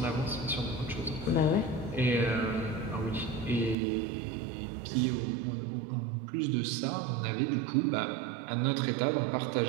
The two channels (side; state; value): left; drops out; at 3.8 s